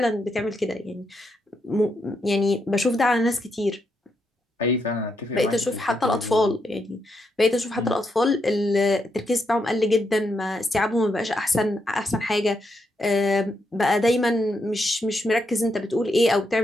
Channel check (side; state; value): both; normal; correlation 0.80